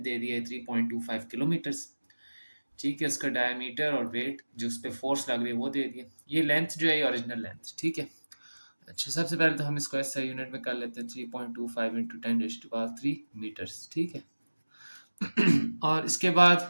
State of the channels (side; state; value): both; inverted; correlation -1.00